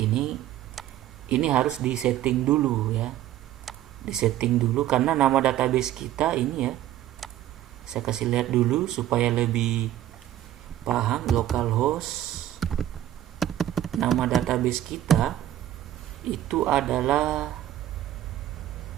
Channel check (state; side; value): quieter; left; 12.8 dB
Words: ini harus disetting dulu ya. Disetting dulu karena nama database kita ini ya. Saya kasih lihat dulu supaya lebih paham. Localhost, nama database kita itu adalah